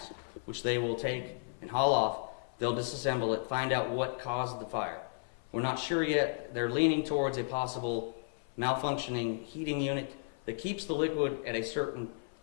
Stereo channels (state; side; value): silent; right; 55 dB below the other